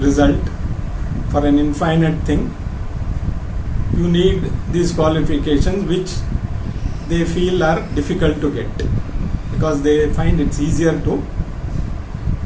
for an infinite thing, you need these qualifications which they feel are difficult to get because they find it's easier to.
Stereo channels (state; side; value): identical; both; correlation 1.00